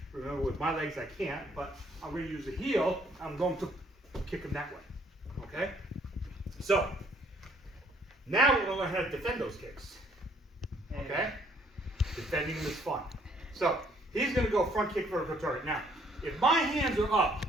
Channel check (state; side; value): normal; both; correlation 0.64